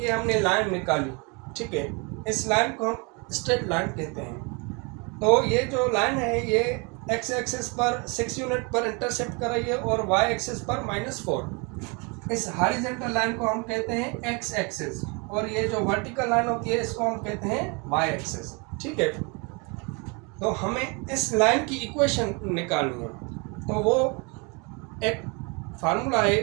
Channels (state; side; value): quieter; left; 31.1 dB